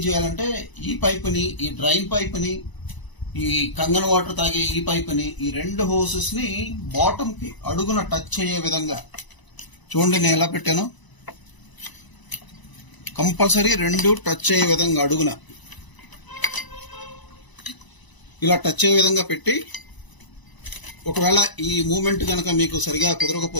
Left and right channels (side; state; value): right; late; 1.0 ms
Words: చేయాలంటే, ఈ పైపుని, ఈ డ్రైన్ పైపుని, ఈ కంగన్ వాటర్ తాగే ఈ పైపుని, ఈ 2 హోసెస్ ని బాటమ్ కి అడుగున టచ్ అయ్యే విధంగా చూడండి. నేను ఎలా పెట్టాను, కంపల్సరీ 2 టచ్ అయ్యే విధంగా అడుగున ఇలా టచ్ అయ్యే విధంగా పెట్టి, ఒకవేళ ఈ మూమెంట్ కనుక మీకు సరిగా